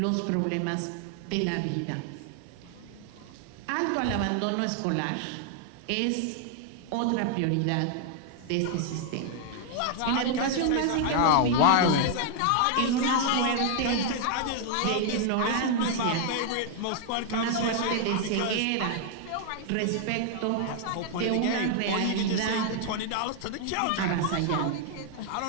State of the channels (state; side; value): different; both; correlation 0.00